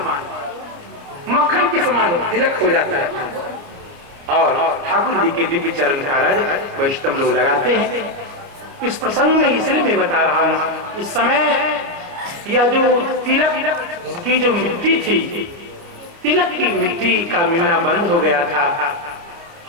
मक्खन के समान तिलक हो जाता है और ठाकुर जी के दिव्य चरण का रज वैष्णव लोग लगाते हैं। इस प्रसंग में इसलिए मैं बता रहा हूं, इस समय यह जो तिलक की जो मिट्टी थी, तिलक की मिट्टी का मिलना बंद हो गया था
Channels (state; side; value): late; left; 29 ms